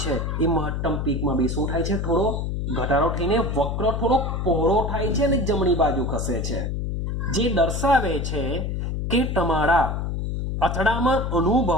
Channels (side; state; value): left; noise; hum, 2 dB below the sound